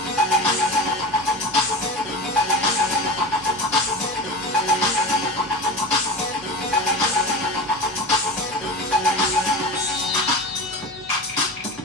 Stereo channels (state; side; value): normal; both; correlation 0.27